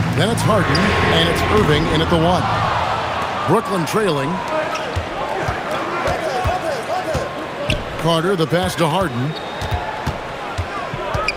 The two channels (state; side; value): identical; both; correlation 1.00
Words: Then it's Harden. And it's Irving in at the 1. Brooklyn trailing. Carter, the pass to Harden.